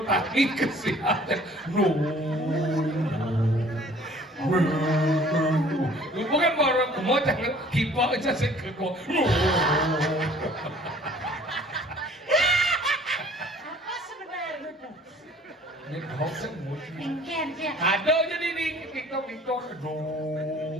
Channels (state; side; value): normal; both; correlation 0.53